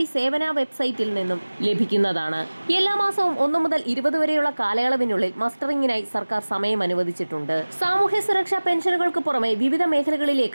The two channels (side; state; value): both; inverted; correlation -1.00